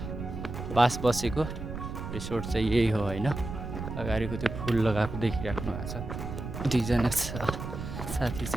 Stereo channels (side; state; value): right; noise; rumble, 7 dB below the sound